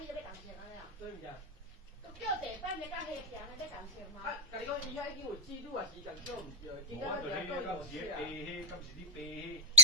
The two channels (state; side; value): normal; both; correlation -0.12